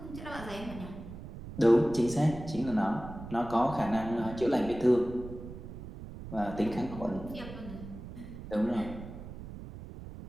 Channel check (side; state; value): right; noise; rumble, 12 dB below the sound